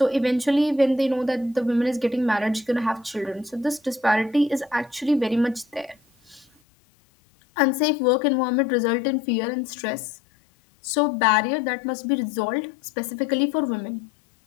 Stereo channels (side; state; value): right; drops out; at 6.5 s